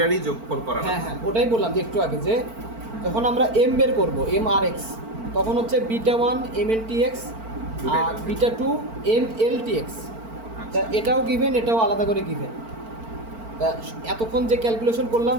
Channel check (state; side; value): late; left; 4.4 ms